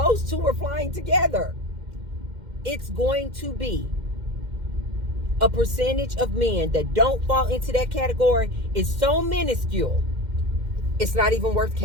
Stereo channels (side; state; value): left; late; 2.1 ms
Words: two are flying together. It's going to be a percentage of men that don't fall into that category is so minuscule, it's not even worth